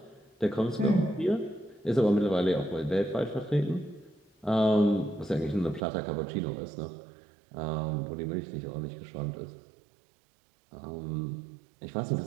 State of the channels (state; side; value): drops out; left; at 5.8 s